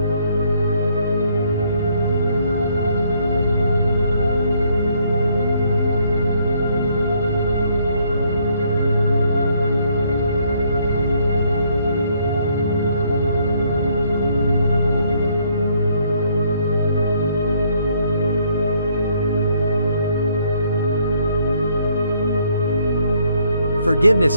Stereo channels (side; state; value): both; inverted; correlation -0.68